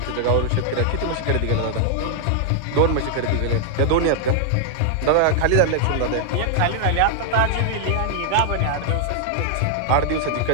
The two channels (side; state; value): both; different; correlation -0.01